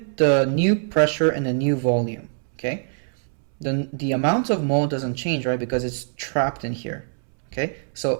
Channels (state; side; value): silent; left; 63 dB below the other